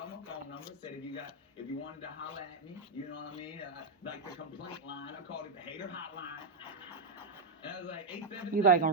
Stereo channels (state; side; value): quieter; left; 3.4 dB